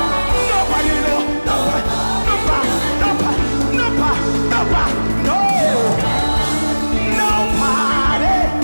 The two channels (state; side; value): inverted; both; correlation -1.00